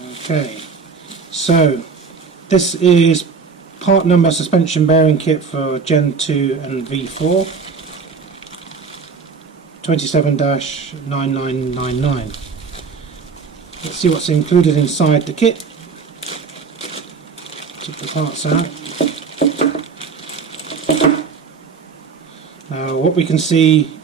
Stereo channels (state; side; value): quieter; left; 5.4 dB